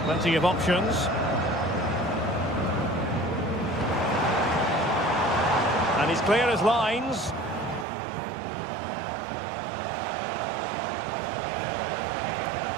Plenty of options. And he's clear as lines.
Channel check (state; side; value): drops out; left; at 7.9 s